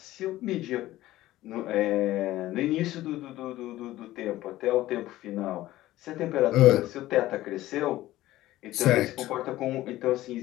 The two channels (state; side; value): quieter; right; 15.8 dB